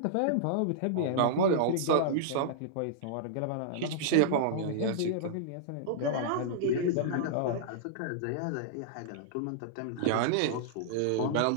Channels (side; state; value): both; different; correlation -0.02